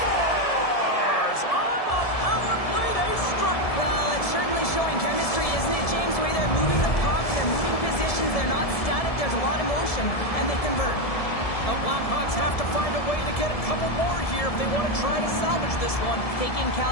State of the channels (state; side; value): late; right; 1.7 ms